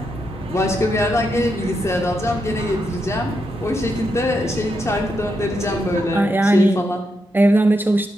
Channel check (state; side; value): normal; both; correlation 0.83